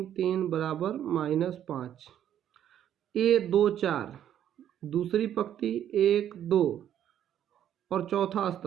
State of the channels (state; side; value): quieter; left; 10.4 dB